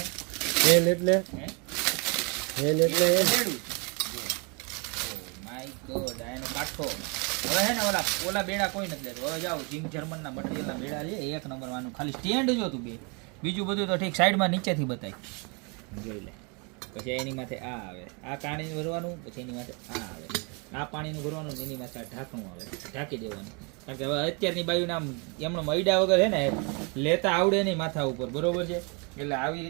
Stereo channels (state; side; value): quieter; left; 32.4 dB